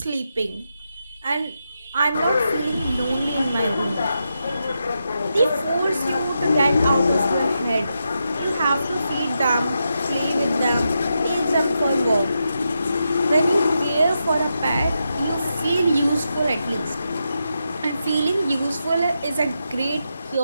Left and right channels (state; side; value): inverted; both; correlation -0.86